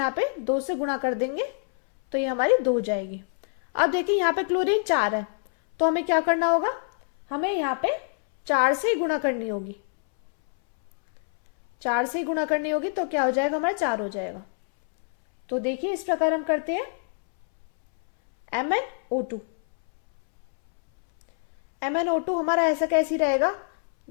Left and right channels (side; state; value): right; silent; 61 dB below the other